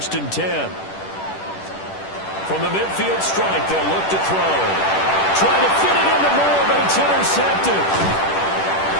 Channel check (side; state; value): right; late; 10 ms